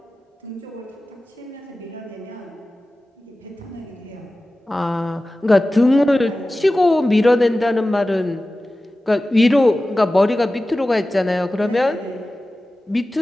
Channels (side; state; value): both; normal; correlation 0.96